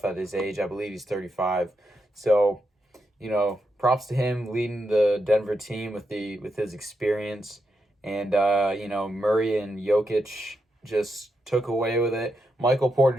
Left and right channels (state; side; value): normal; both; correlation 0.84